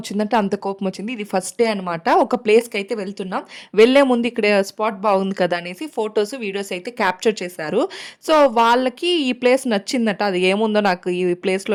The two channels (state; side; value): identical; both; correlation 1.00